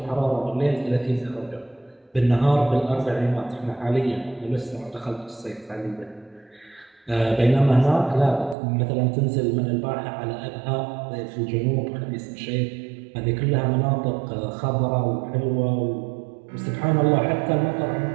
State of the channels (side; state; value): left; drops out; at 8.6 s